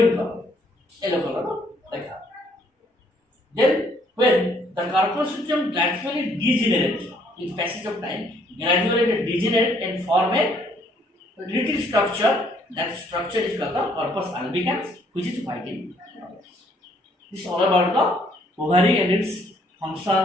color, no? Like that. Then when the corpus luteum gradually degenerate in passage of time, gradually degenerate and form a little structure. That structure is called the corpus albicans, which is white in color. This is all about the ovary and its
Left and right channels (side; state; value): both; normal; correlation 0.65